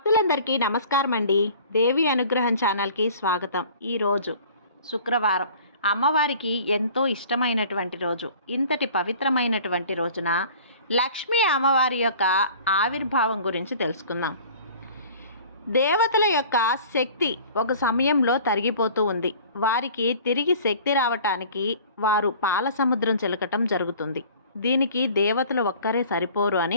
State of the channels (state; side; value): inverted; both; correlation -0.47